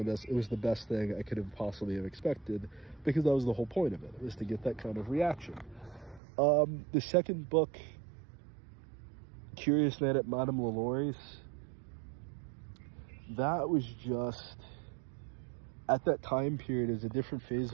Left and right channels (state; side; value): drops out; left; at 6.2 s